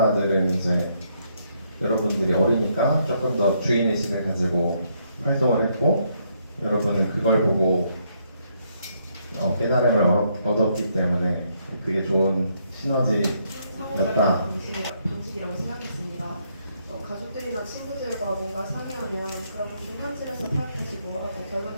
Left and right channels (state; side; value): inverted; both; correlation -0.73